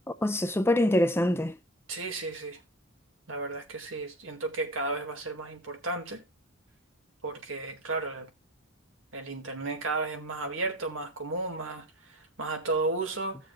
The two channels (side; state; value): both; normal; correlation 0.37